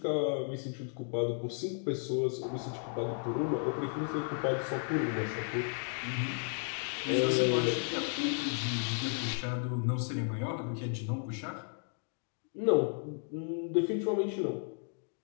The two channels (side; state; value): right; silent; 55 dB below the other